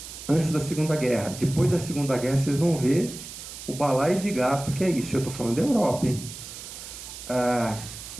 antes da Segunda Guerra, depois da Segunda Guerra, vocês vão ver o balaio de gato que é isso. Eu estou falando da Europa, hein?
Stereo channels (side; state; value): right; noise; hiss, 12 dB below the sound